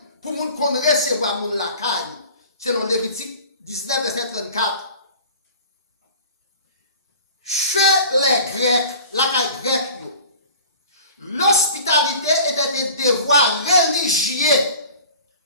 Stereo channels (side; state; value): both; inverted; correlation -0.43